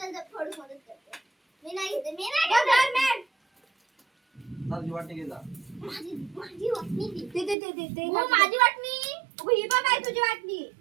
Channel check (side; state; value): left; drops out; at 7.6 s